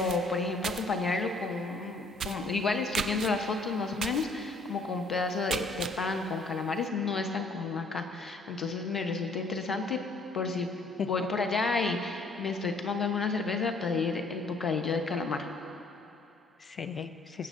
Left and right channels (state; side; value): quieter; right; 3.1 dB